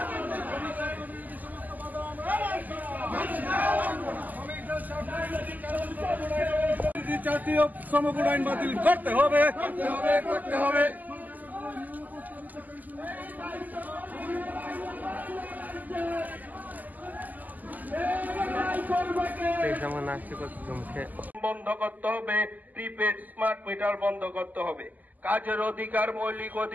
জাতীয় শ্রমকোড আইন বাতিল করতে হবে, করতে হবে। বন্ধ করতে হবে, প্রিপেড স্মার্ট মিটার বন্ধ করতে হবে, কাজের অধিকার মৌলিক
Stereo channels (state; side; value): late; left; 0.082 ms